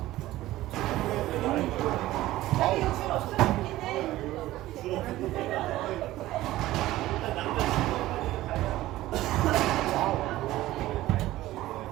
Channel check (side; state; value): left; quieter; 16.0 dB